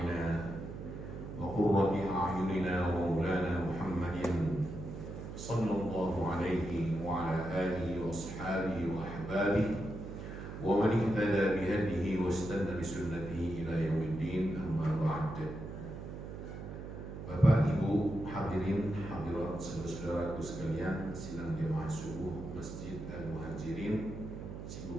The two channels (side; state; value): right; noise; hum, 9 dB below the sound